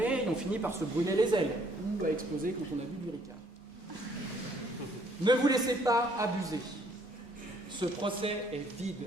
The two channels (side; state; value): both; normal; correlation 0.64